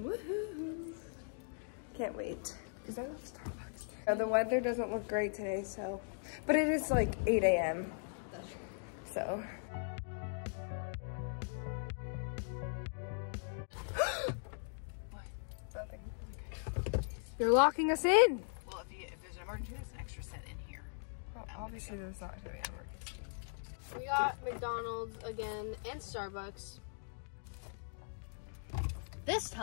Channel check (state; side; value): silent; right; digital silence